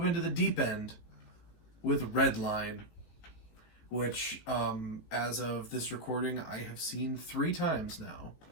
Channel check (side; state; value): right; late; 18 ms